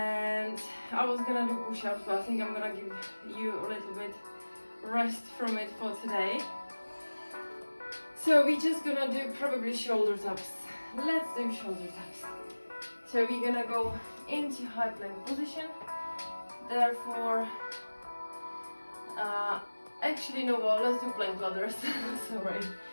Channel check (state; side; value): inverted; both; correlation -1.00